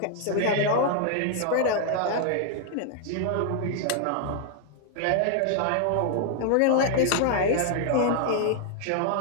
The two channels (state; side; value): different; both; correlation 0.00